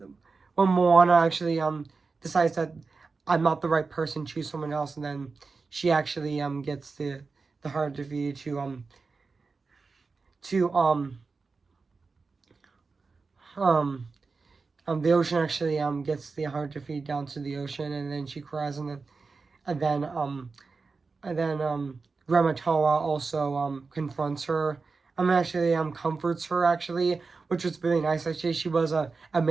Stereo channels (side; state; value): left; quieter; 4.3 dB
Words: when Moana actually decides that I'm not the right person, choose someone else, and then she actually gets the heart defeated to um the ocean actually gets the heart defeated down to the ocean, and then she cries, and then Grandma Toa also confronts her. Actually comforts her, actually, which was really nice. Actually, she was a